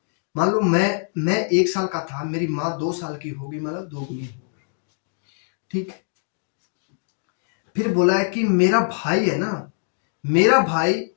मान लो मैं 1 साल का था, मेरी माँ 2 साल की होगी, मतलब 2 गुनी होगी। ठीक। फिर बोला है कि मेरा भाई है ना, मेरा भाई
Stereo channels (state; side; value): silent; right; digital silence